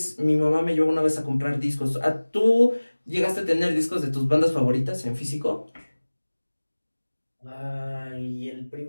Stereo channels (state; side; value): inverted; both; correlation -1.00